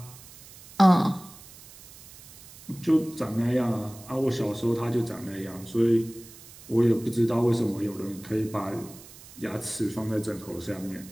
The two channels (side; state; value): right; noise; hiss, 19 dB below the sound